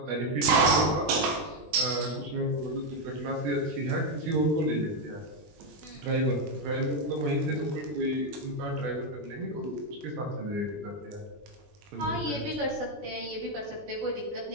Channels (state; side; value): late; left; 20 ms